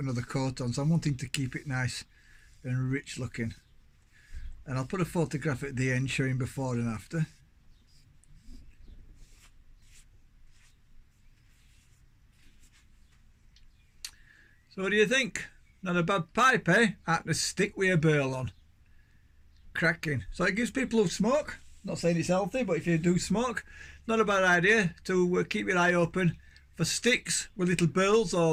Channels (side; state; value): both; identical; correlation 1.00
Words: another coat on, so I'm wanting to keep it nice and rich looking. And I'll put a photograph at the end showing before and after. So what do you think? Not a bad pipe, eh? Out to stick with a burl on. Cracking. So it gives people who smoke, not saying it's healthy, but if you do smoke, not a bad idea to keep your eye open for sticks with little burls